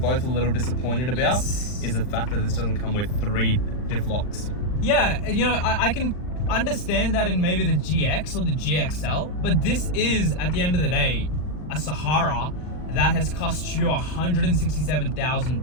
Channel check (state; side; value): late; right; 39 ms